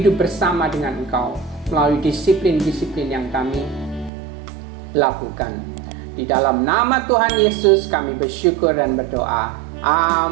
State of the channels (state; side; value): drops out; left; at 4.1 s